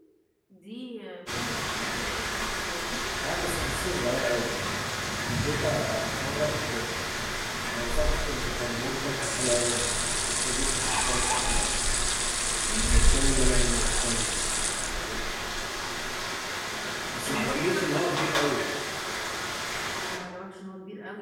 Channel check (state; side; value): identical; both; correlation 1.00